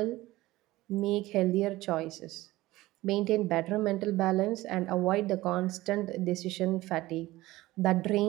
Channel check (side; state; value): left; quieter; 17.9 dB